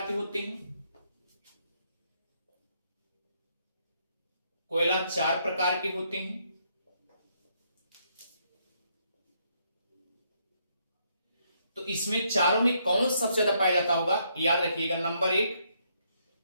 के होते हैं। कोयला 4 प्रकार के होते हैं। तो इसमें चारों में कौन सबसे ज्यादा पाया जाता होगा, याद रखिएगा। नंबर 1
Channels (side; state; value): both; inverted; correlation -0.73